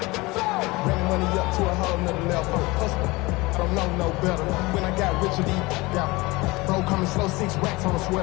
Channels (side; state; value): right; quieter; 22.6 dB